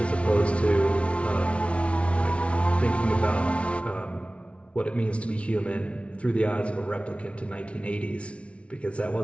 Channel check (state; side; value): late; right; 0.061 ms